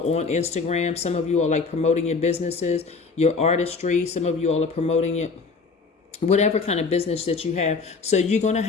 on Instagram. Some of you are promoting your businesses, your artistry. Some of you all are promoting it, whatever kind of business that you have. So you're going to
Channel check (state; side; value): quieter; right; 4.5 dB